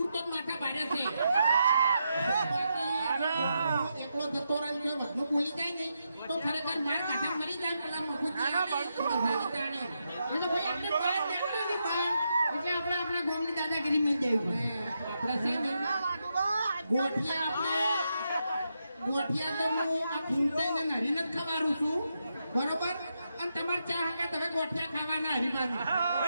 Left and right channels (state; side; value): inverted; both; correlation -0.84